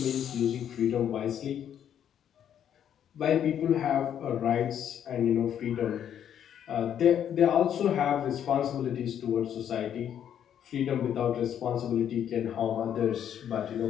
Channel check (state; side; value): quieter; right; 9.5 dB